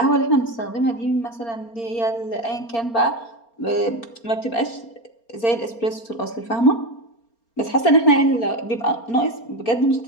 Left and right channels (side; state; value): right; late; 4.3 ms